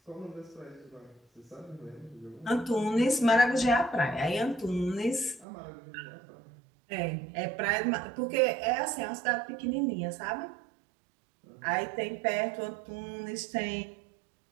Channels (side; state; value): left; drops out; at 5.5 s